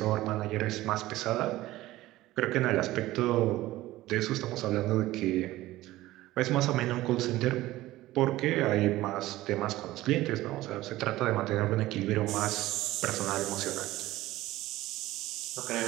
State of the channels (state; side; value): quieter; left; 16.8 dB